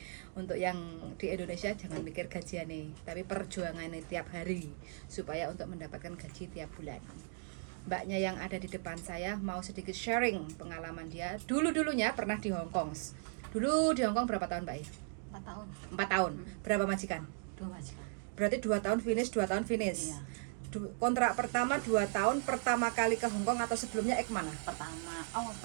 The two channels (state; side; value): silent; left; 53 dB below the other